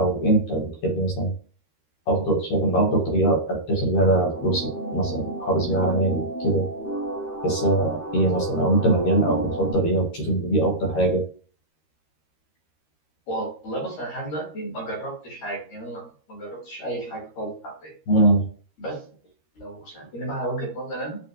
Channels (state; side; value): late; right; 13 ms